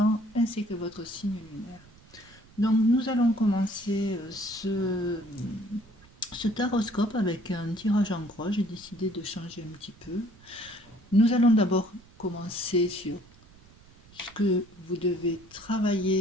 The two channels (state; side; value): noise; right; rumble, 26 dB below the sound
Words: ainsi que votre signe lunaire. Donc, nous allons commencer ce taroscope avec un tirage en croix. J'ai décidé de changer un petit peu. Nous allons d'abord commencer sur ce que vous devez